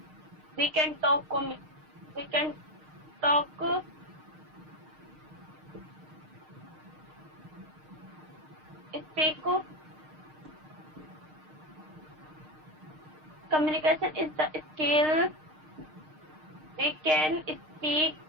We can talk. Speak. Communication is the skill. We can speak.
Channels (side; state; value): left; late; 6.5 ms